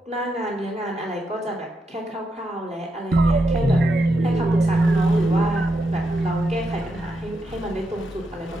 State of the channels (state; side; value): normal; both; correlation 0.83